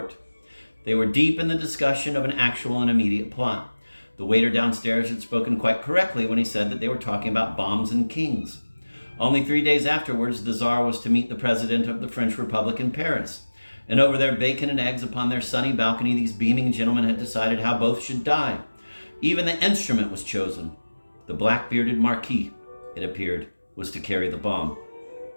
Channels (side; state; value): both; inverted; correlation -1.00